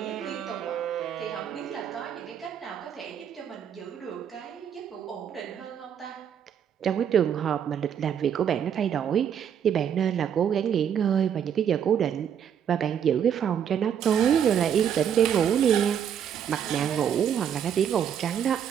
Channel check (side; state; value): left; quieter; 8.6 dB